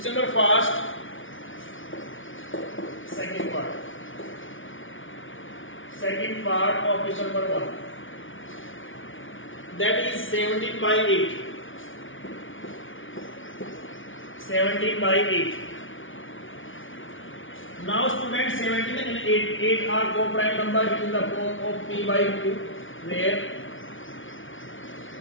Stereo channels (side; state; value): right; late; 0.57 ms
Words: number first. Second part of question number 1. That is 17 by 8. 17 by 8. Now students, 17 and 8 are co-prime number in the form of P by Q, where